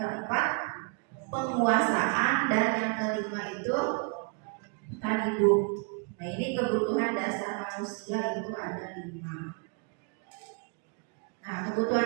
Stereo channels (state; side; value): quieter; left; 36.3 dB